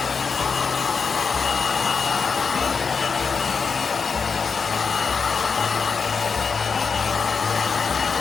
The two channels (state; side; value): quieter; right; 5.3 dB